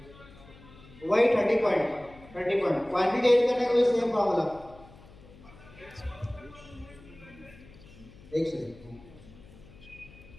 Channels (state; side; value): noise; left; hum, 21 dB below the sound